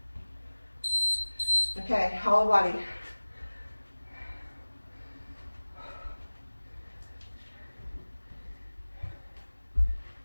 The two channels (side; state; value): both; inverted; correlation -1.00